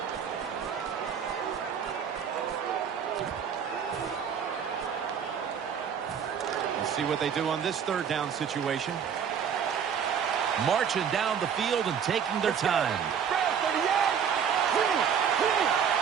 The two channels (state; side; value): quieter; left; 7.6 dB